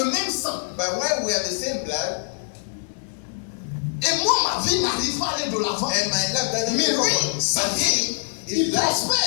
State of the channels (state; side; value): silent; right; 63 dB below the other